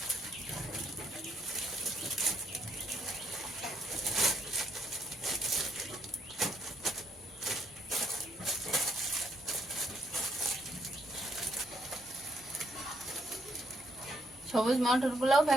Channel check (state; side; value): normal; both; correlation 0.72